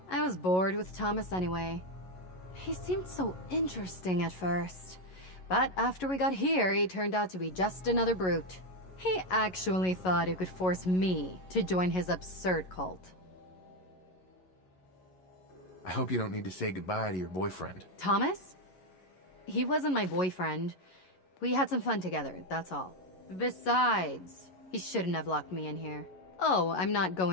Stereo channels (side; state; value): right; late; 11 ms